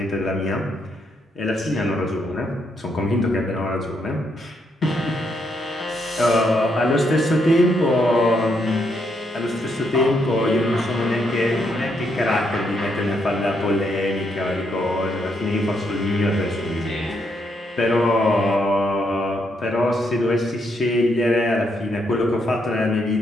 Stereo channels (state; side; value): normal; both; correlation 0.77